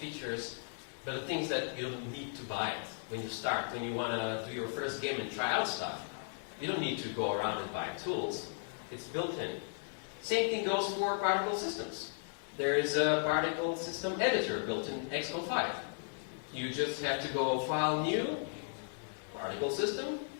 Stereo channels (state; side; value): silent; right; 54 dB below the other